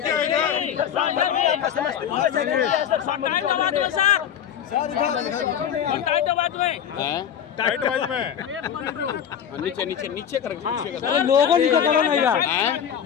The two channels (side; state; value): right; quieter; 9.0 dB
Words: नीचे नीचे कर, अरे लोगों नीचे करो नहीं यार।